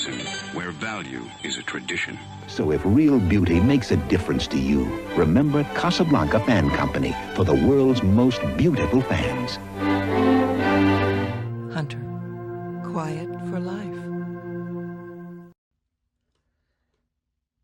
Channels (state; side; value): identical; both; correlation 1.00